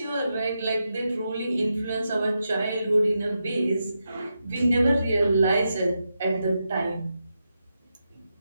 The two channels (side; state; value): both; inverted; correlation -0.86